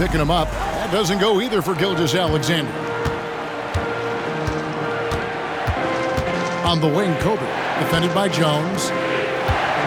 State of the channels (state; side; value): identical; both; correlation 1.00